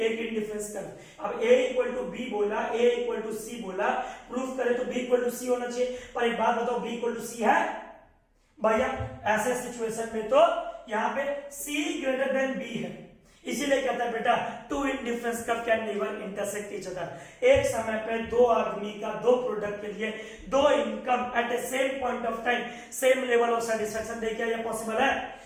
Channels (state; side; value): identical; both; correlation 1.00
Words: इंडिफरेंस कर्व। अब a इक्वल टू b बोला, a इक्वल टू सी बोला, प्रूफ करे तो b इक्वल टू सी होना चाहिए। पर एक बात बताओ, b इक्वल टू सी है? भैया ऐसे सिचुएशन में तो यहां पे c ग्रेटर देन b है, इसीलिए कहता है बेटा two indifference curve can never intersect each other. एक समय पे दो आदमी का, दो प्रोडक्ट के लिए दो income at a same point of time, same level of satisfaction दे, क्या ये पॉसिबल है?